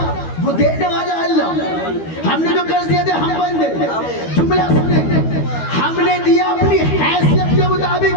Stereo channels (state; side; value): late; right; 12 ms